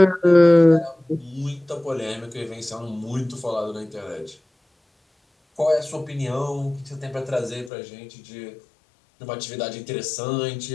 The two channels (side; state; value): right; drops out; at 7.7 s